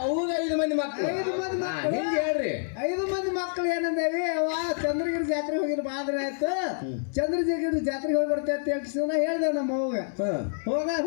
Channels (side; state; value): right; silent; digital silence